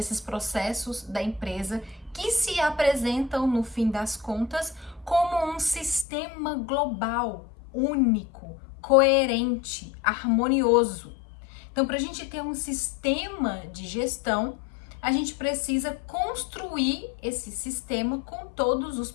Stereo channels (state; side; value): drops out; right; at 6.1 s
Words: processos da empresa que se apresentam, no fim das contas, como um sistema global, único, coerente, harmonioso. Então, para a gente ter um sistema de gestão, a gente precisa construir esse sistema com todos os